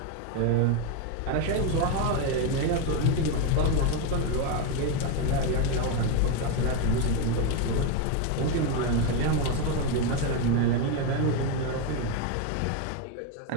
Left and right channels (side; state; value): both; different; correlation 0.02